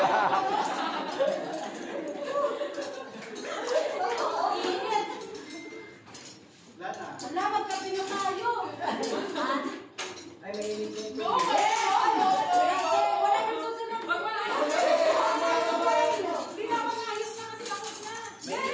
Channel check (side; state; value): both; identical; correlation 1.00